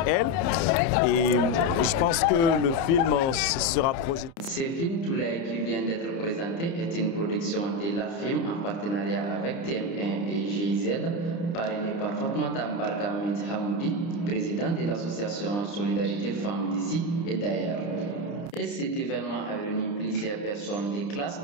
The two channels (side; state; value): right; late; 30 ms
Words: elles. Et je pense que le film sera projeté. Ce film Toulaye qui vient d'être présenté est une production de la film en partenariat avec TM1 et GIZ, parrainé par Fatmata Mbarka Mint Hamoudi, président de l'association Solidarité Femmes d'ici et d'ailleurs. Et cet événement a réuni plusieurs personnes de classes